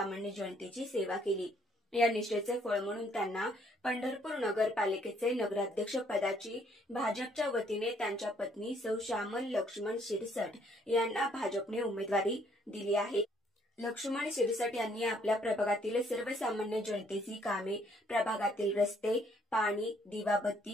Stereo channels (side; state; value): both; normal; correlation 0.66